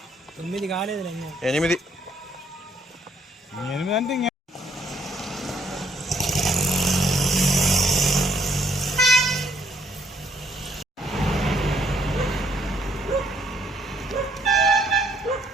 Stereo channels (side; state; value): both; normal; correlation 0.68